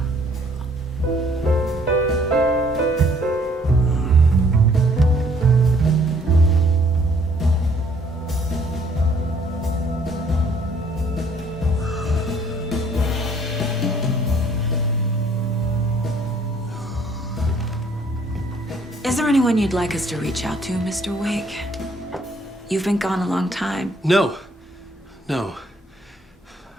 Is there anyone you'd like us to reach out to, Mr. Wake? You've been gone a long time. No. No.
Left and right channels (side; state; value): both; normal; correlation 0.62